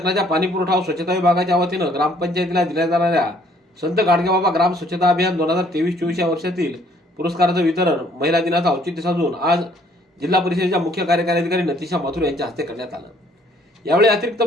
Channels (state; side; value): normal; both; correlation 0.62